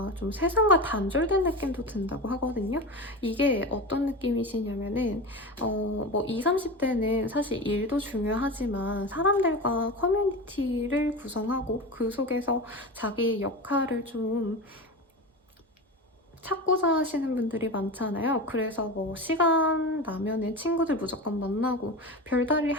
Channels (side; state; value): both; normal; correlation 0.25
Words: 좀 세상과 단절된 느낌도 든다고 하거든요. 이게 어떤 느낌이시냐면은 뭐 20, 30대는 사실 일도 중요하지만 사람들과 커뮤니티를 구성하고 그 속에서 자기의 역할을 좀 찾고자 하시는 분들이 많잖아요. 그래서 뭐 시간 나면은 친구들 무조건 만나고 별다른